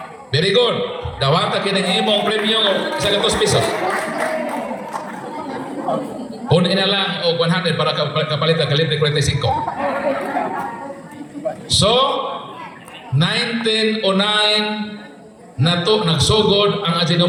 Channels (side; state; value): both; identical; correlation 1.00